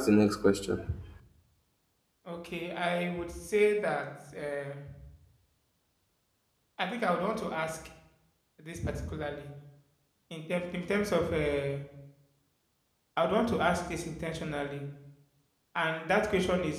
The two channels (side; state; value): both; identical; correlation 1.00